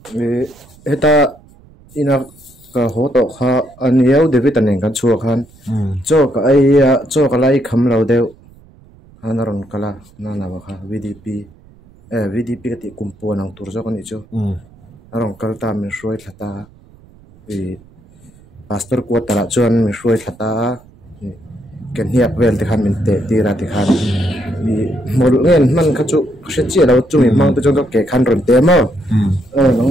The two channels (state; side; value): noise; right; rumble, 26 dB below the sound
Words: eta ina ka ho to kha aniau david anen kan chu khan cho ka ai cho ka lai kham lo deu hanaron kala na na kha VDP ka ti kumpo nang turjo kan icho arong kalta min shroi thata pastor ko tara chuan min shroi thata ken hiak vel te khan min te ti ra ti khan mi mol ngen man kha chu hre chi lo chu mi mang te chon ke khan ron te mo nang